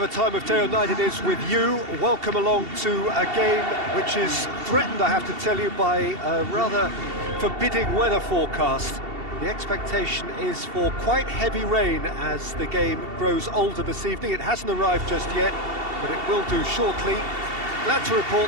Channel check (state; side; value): late; left; 2.7 ms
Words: time of day or night it is with you, welcome along to a game which is threatened, I have to tell you, by a rather forbidding weather forecast. The expectation is for quite heavy rain as the game grows older this evening. It hasn't arrived just yet, but it will do shortly. Glad to